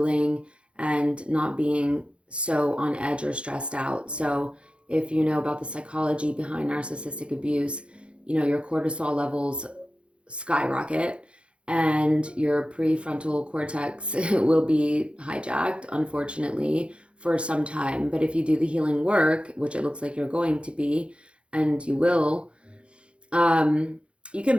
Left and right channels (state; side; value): late; left; 0.059 ms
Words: and not being so on edge or stressed out. So if you know about the psychology behind narcissistic abuse, you know, your cortisol levels skyrocket and your prefrontal cortex will be hijacked, unfortunately, for some time. But if you do the healing work, which it looks like you're going to be, and you will, you can